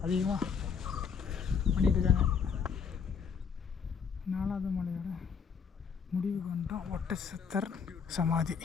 அதிகமாக பண்ணிகிட்ருக்காங்க. 4வது மலையோட முடிவுக்கு வந்துட்டோம். ஒட்டச்சத்தர் சமாதி,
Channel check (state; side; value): quieter; right; 6.4 dB